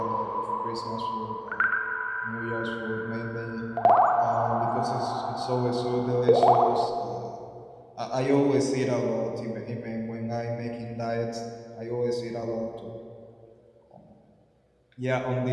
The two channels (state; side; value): identical; both; correlation 1.00